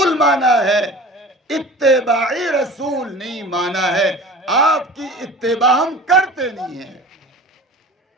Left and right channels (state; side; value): normal; both; correlation 0.39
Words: مانا ہے، اتباعی رسول نہیں مانا ہے۔ آپ کی اتباع ہم کرتے نہیں ہیں،